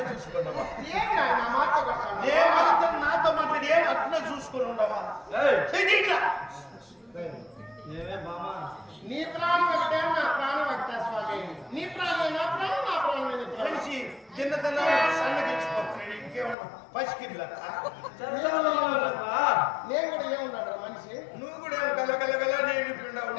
చూసుకున్నావా? నా మాట నాతో మాట్లాడి ఏం అట్లే చూసుకుని ఉండవా? ఏమే మామా నీ ప్రాణం ఒకటే నా ప్రాణం ఒకటే స్వామి. నీ ప్రాణం నా ప్రాణం నా ప్రాణం మనిషి తిన్నదన్నా సన్నగిచ్చిపోతున్నాడు. ఇంకేమన్నా పసికిర్లా నేను కూడా ఏమున్నాడు మనిషి. నువ్వు కూడా గలగలగల నేను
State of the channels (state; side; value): drops out; right; at 16.6 s